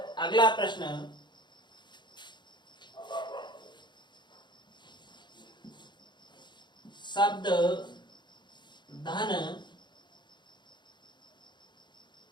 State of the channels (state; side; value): late; right; 0.22 ms